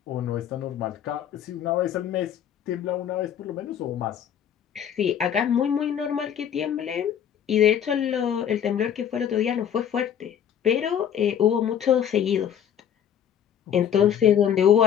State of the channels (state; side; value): quieter; right; 9.2 dB